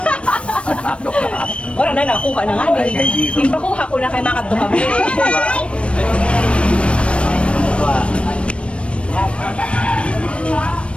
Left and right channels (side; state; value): right; late; 0.060 ms